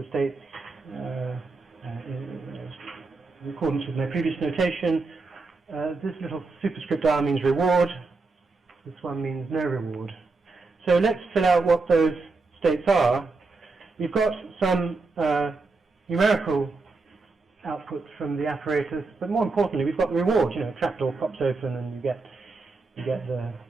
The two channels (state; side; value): quieter; left; 3.8 dB